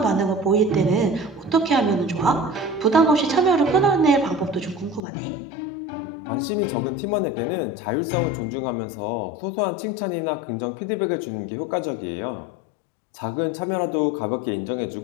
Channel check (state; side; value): drops out; right; at 5.0 s